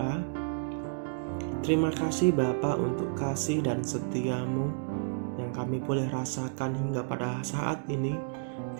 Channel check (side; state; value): left; silent; digital silence